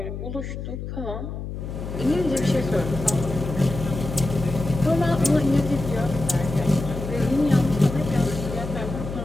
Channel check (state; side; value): noise; left; hum, 7 dB below the sound